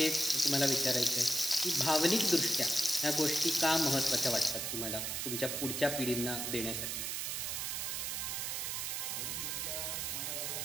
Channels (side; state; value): right; noise; hiss, 2 dB below the sound